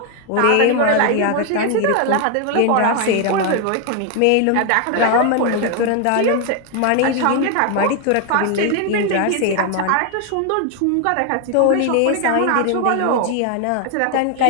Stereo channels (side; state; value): both; different; correlation 0.01